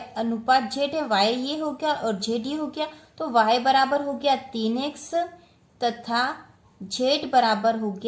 अनुपात z है, y ये हो गया और z ये हो गया, तो y बराबर हो गया 3x तथा z बराबर हो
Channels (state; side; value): identical; both; correlation 1.00